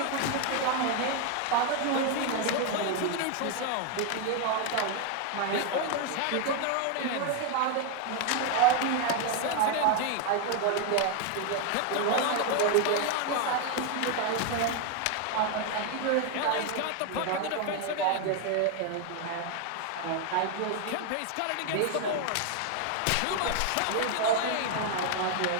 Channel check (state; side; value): different; both; correlation 0.01